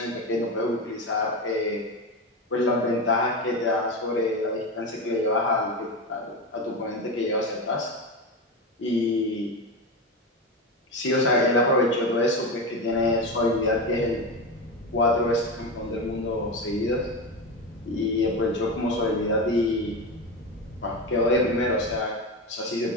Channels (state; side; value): normal; both; correlation 0.19